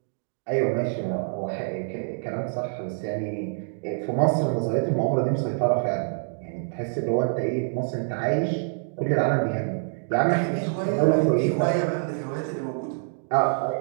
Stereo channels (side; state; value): left; silent; digital silence